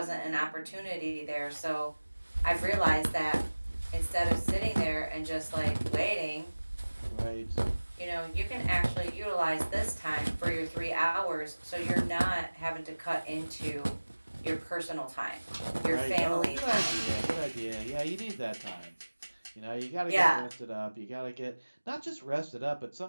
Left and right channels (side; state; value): both; inverted; correlation -1.00